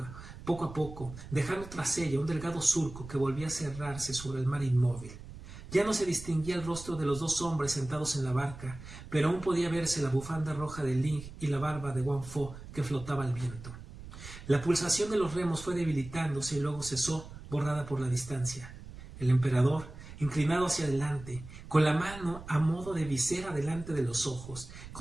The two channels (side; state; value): right; noise; rumble, 14 dB below the sound